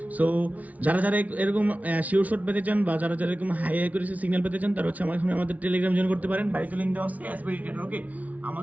সো যারা যারা এরকম শিওর শট পেতে চান বা যারা যারা এরকম হাই হাই করে সিগন্যাল পেতে চান তারা হচ্ছে আমাদের টেলিগ্রাম জয়েন করতে পারেন। বাইরে লিঙ্ক দেওয়া আছে এসবিডি ট্রেডার, ওকে।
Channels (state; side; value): late; left; 0.072 ms